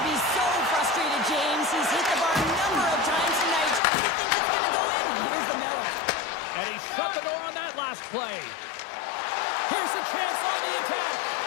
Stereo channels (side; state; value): right; drops out; at 3.8 s